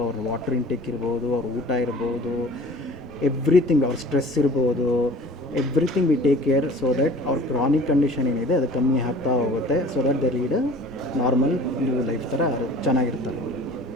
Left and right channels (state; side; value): normal; both; correlation 0.45